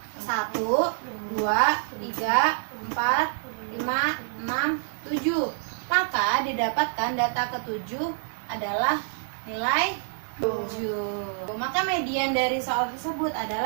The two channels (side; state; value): left; silent; digital silence